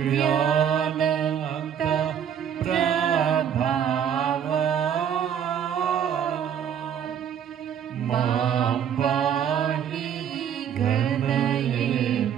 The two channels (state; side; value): quieter; left; 8.8 dB